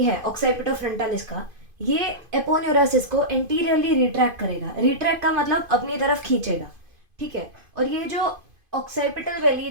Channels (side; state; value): left; late; 2.5 ms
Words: है ऑक्साइपिटोफ्रंटालिस का, ये एपोन्यूरोसिस को एंटीरियरली रिट्रैक्ट करेगा. रिट्रैक्ट का मतलब अपनी तरफ खींचेगा. ठीक है. और ये जो ऑक्साइपिटल बेली